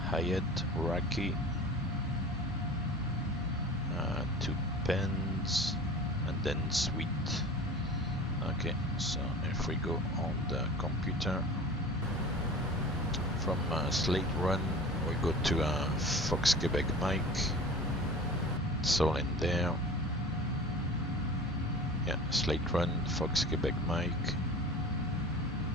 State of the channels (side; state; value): both; normal; correlation 0.39